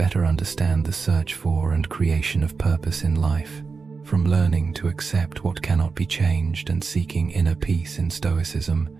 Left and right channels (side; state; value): left; quieter; 4.8 dB